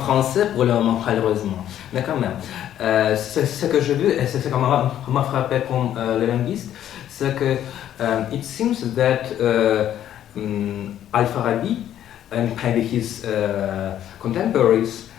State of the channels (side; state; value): right; quieter; 11.1 dB